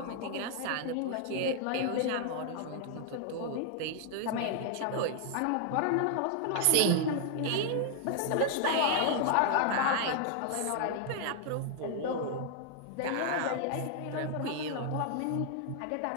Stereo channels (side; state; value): both; different; correlation 0.00